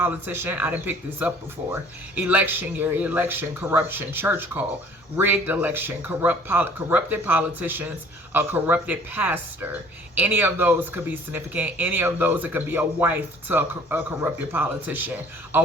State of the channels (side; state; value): both; normal; correlation 0.53